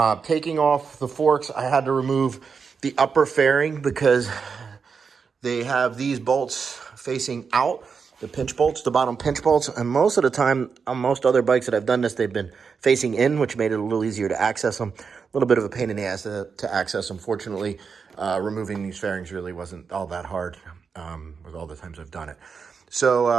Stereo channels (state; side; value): quieter; left; 5.7 dB